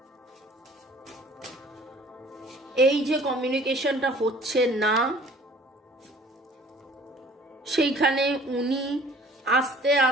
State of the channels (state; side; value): normal; both; correlation 0.52